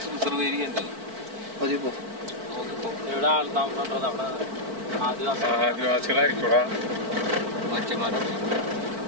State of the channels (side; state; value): left; late; 4.5 ms